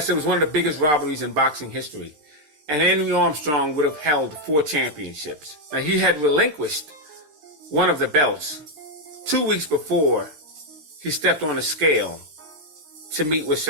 it was one of the biggest robberies in boxing history. And Henry Armstrong would have held 4 championships. Now, he had relinquished one of the belts 2 weeks before he stepped on the scale to meet with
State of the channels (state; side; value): late; left; 13 ms